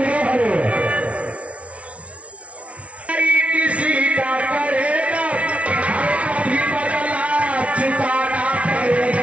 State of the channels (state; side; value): late; left; 0.063 ms